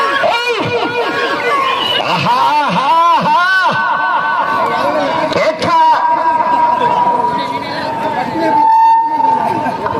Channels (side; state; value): both; identical; correlation 1.00